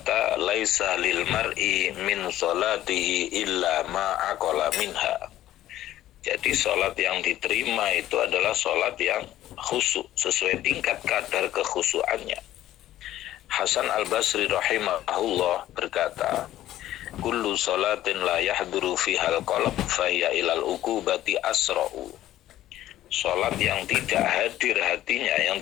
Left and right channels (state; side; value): quieter; right; 13.6 dB